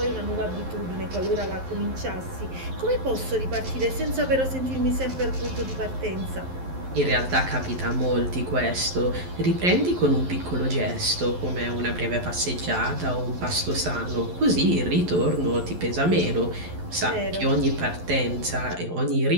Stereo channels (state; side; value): late; left; 11 ms